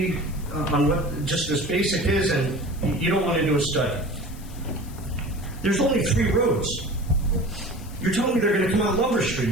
on what just this basic is, and you don't want to do a study. There's only 3 roads. You're telling me they're going to come out Lover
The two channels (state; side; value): noise; left; hiss, 20 dB below the sound